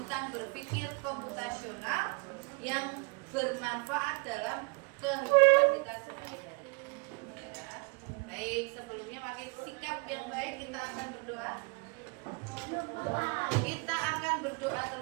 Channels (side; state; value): left; quieter; 31.0 dB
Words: berpikir komputasional yang bermanfaat dalam kehidupan kita sehari-hari. Ya. Baik, sebelumnya pakai sikap yang baik kita akan berdoa. Kita akan berdoa